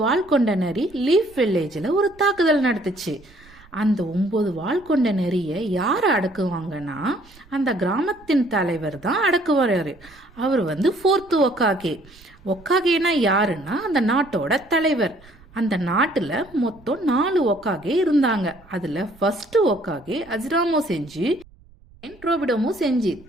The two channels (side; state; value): right; noise; rumble, 26 dB below the sound